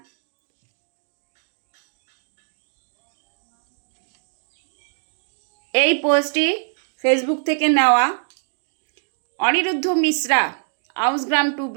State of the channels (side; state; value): left; silent; digital silence